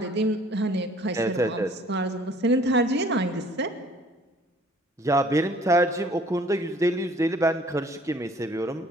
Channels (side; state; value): both; normal; correlation 0.55